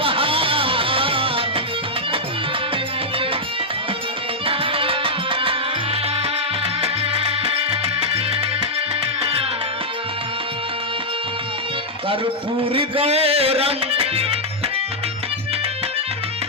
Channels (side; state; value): both; normal; correlation -0.05